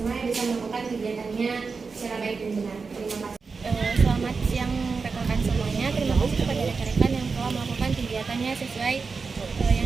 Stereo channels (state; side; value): quieter; left; 4.8 dB